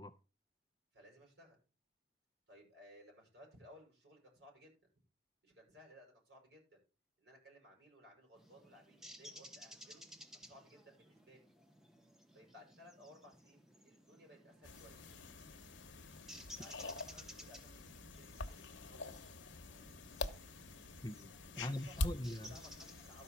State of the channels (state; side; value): normal; both; correlation 0.55